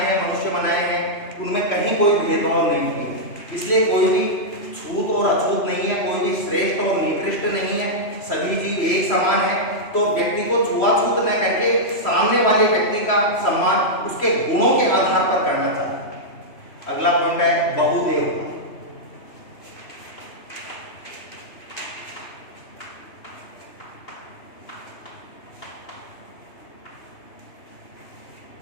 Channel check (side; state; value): right; late; 3.1 ms